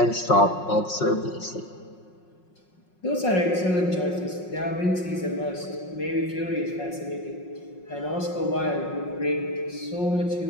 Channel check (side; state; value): right; late; 5.5 ms